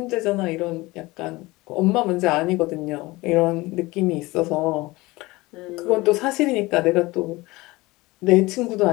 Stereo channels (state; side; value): quieter; right; 21.2 dB